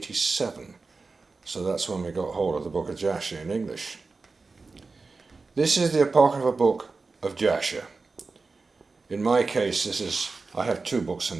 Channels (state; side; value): quieter; left; 4.1 dB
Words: So that's when we got hold of the Book of Jasher in English. This is the Apocryphal Book of Jasher. In my case, I have two books